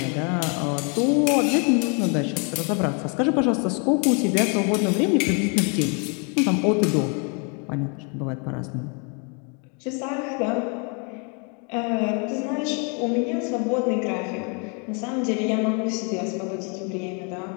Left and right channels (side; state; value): right; quieter; 36.3 dB